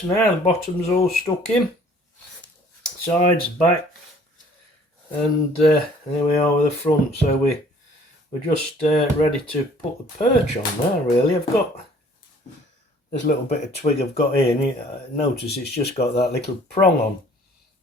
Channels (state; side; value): normal; both; correlation 0.55